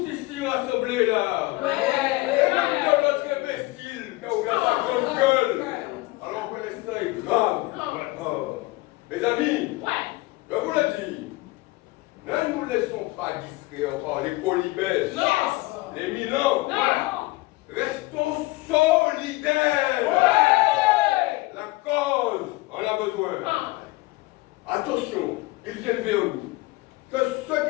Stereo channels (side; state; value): right; quieter; 21.6 dB